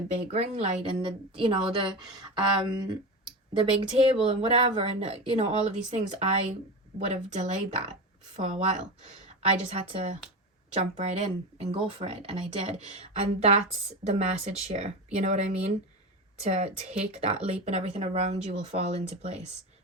big ring light and the big table and whatever, and, all of these things, I would have delayed that for a while. I just had to jump right in and go for it, and I did. And that's the message here, you know what I mean? To take that leap, and everything around you will fall into place,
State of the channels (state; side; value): normal; both; correlation 0.23